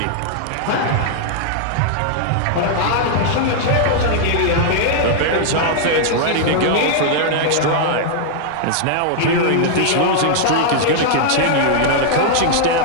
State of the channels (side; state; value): both; different; correlation -0.01